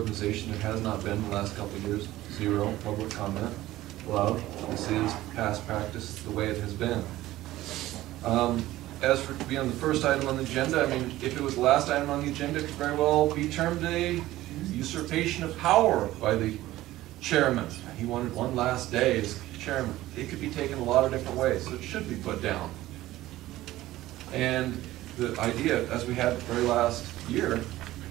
there has not been in the last couple of years, 0 public comment allowed. This is past practice, the way it has been. As for being the first item on the agenda, I mean, if it was the last item on the agenda, it could very well be termed a usurpation of power by the chairman. He wanted one last day as chairman. It could be taken a lot of different ways, so it should be put down. And the idea, as we had the very last year,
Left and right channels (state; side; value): quieter; left; 15.9 dB